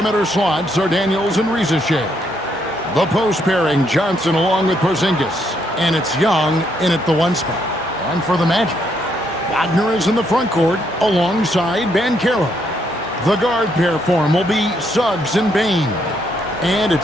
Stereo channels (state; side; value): normal; both; correlation 0.74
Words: slots are Daniels and Riza-Shea. The post pairing, Johnson along with Porzingis. And it's Young in at the 1 spot. And for the Magic, Wagner is in the front court alongside Banchero. The guard pair form will be Suggs and Bain. And